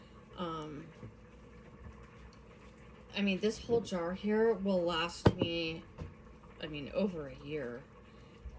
I mean, this whole jar here will last me, I mean, over a year.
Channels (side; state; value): both; identical; correlation 1.00